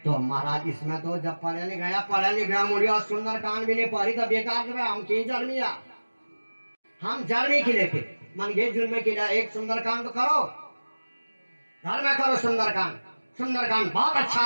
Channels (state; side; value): inverted; both; correlation -1.00